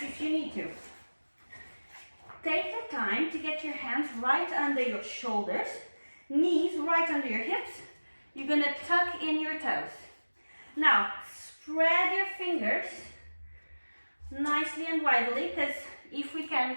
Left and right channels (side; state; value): both; inverted; correlation -1.00